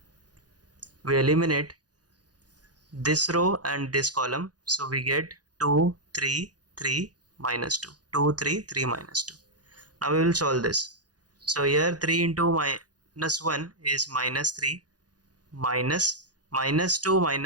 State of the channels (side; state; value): left; late; 0.69 ms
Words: we eliminate this row and this column, so we get 2, 3, 3, minus 2. 2, 3, 3, minus 2. Now we will solve this. So here 3 into minus 1 is minus 3, minus 2